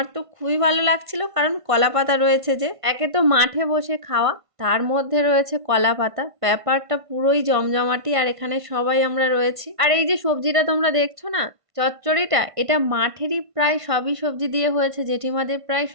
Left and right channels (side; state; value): left; late; 1.5 ms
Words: তো খুবই ভালো লাগছিল, কারণ কলা পাতা রয়েছে। যে একে তো মাঠে বসে খাওয়া, তার মধ্যে রয়েছে কলা পাতা, ব্যাপারটা পুরোই জমজমাটি। আর এখানে সবাই আমরা রয়েছি। আর এই যে সবজিটা তোমরা দেখছো না, চচ্চড়িটা, এটা মাঠেরই প্রায় সবই সবজি দিয়ে হয়েছে। জেঠিমাদের প্রায়